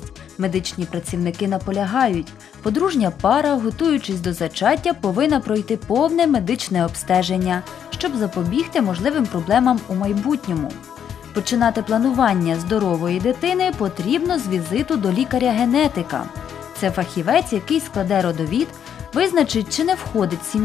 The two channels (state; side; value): quieter; right; 8.7 dB